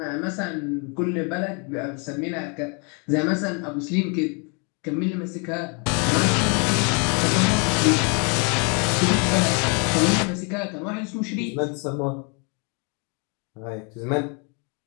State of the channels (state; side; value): quieter; right; 35.2 dB